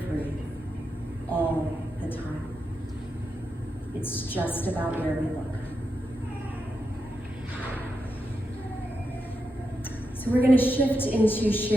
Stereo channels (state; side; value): normal; both; correlation 0.86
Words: all the time. It's just about where we look. So we're going to shift into